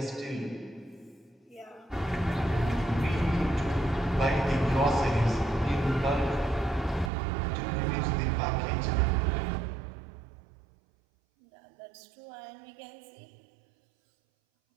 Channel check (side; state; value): left; drops out; at 7.1 s